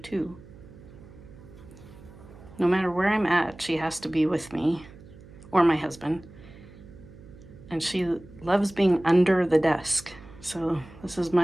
No matter where I'm at, she has to be with me, or my husband. And she loves being under the desk. So this is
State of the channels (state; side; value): noise; right; hum, 20 dB below the sound